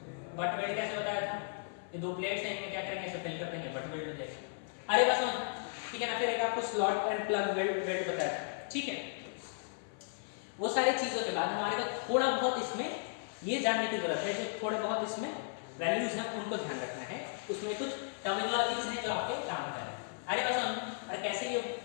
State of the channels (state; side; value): silent; right; 54 dB below the other